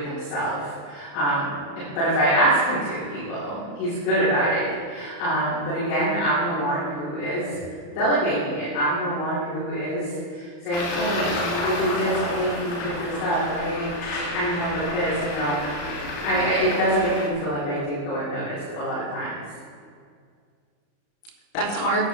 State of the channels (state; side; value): late; right; 35 ms